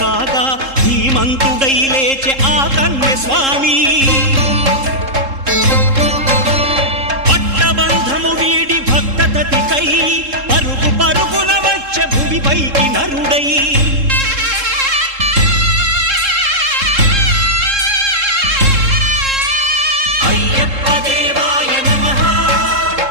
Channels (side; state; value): left; late; 3.7 ms